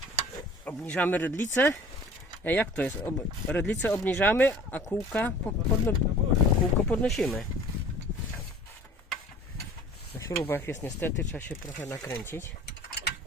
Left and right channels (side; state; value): both; normal; correlation 0.47